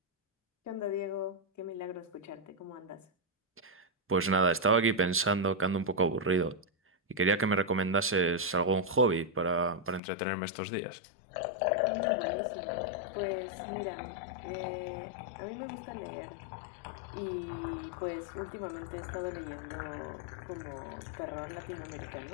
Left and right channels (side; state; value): right; drops out; at 10.0 s